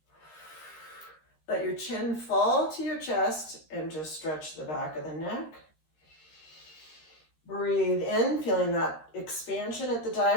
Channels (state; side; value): late; right; 13 ms